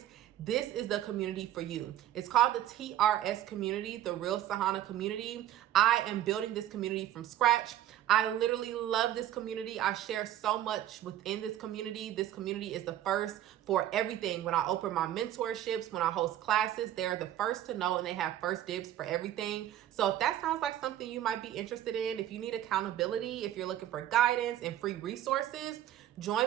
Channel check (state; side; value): quieter; left; 12.3 dB